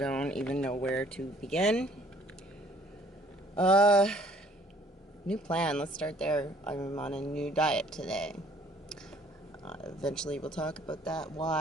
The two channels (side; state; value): both; normal; correlation 0.58